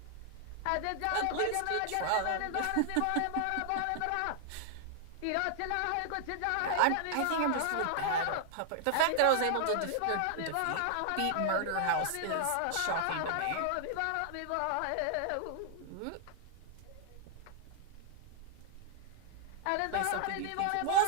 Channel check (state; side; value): different; both; correlation 0.00